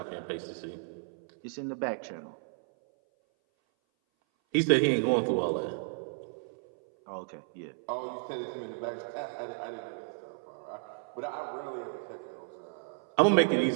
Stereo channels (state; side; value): silent; left; 56 dB below the other